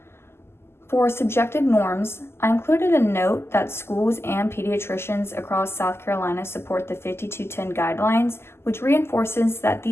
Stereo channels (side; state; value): right; late; 0.12 ms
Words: For subjective norms, I included a note that schools and pediatricians across South Carolina support the 5210 guidelines, which reinforces that